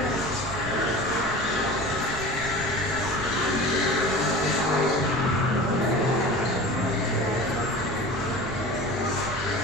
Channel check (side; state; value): right; noise; rumble, 12 dB below the sound